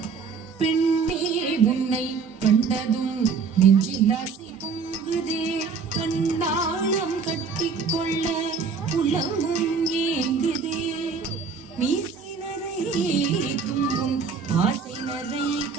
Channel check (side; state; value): left; quieter; 5.3 dB